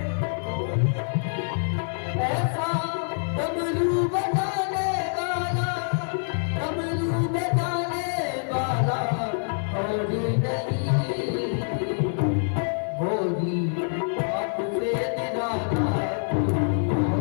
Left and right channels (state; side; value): silent; right; 61 dB below the other